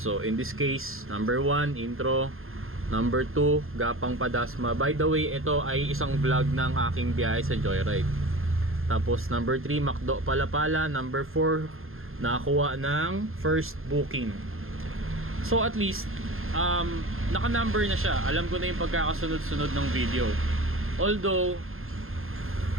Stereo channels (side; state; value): left; late; 0.61 ms